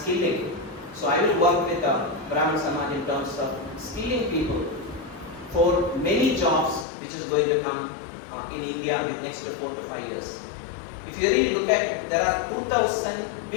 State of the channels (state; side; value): drops out; right; at 6.9 s